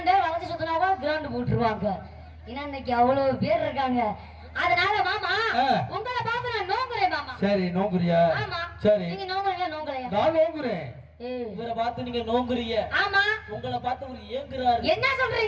வளைச்சு சுத்தினாவா கிரவுண்ட் போட்டுருவாங்க. ஏன்னா இன்னைக்கு அவ்வளவு பேர் இருக்காங்க. அதனால மாமா உங்களை பார்த்து நான் நோங்குறேன் மாமா. சரி நோங்குறியா? ஆமா. சரி நீங்க நோங்குறீங்க நோங்கலையா? நான் நோங்குறேன். இவரை பார்த்து நீங்க நோங்குறீங்க. ஆமா. உங்களை பார்த்து ஒரு ஏங்குறாரு. என்ன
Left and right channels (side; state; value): both; identical; correlation 1.00